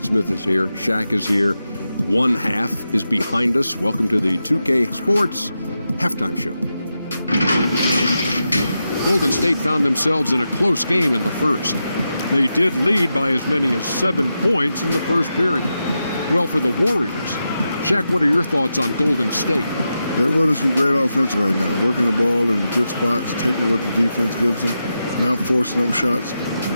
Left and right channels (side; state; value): both; inverted; correlation -0.88